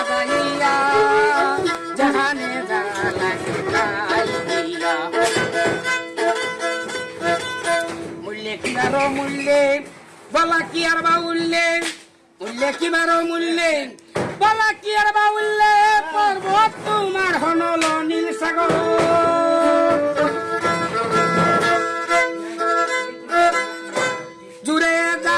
জাহানে যা লাগে তাই দিয়া। মূল্যে কিবারো মূল্যে বলা কি আর বা উল্লে, মূল্যে কিবারো মূল্যে বলা কি আর বা উল্লে। পর্বত তোমার হনল নীল সাগর, জুড়ে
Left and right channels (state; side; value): identical; both; correlation 1.00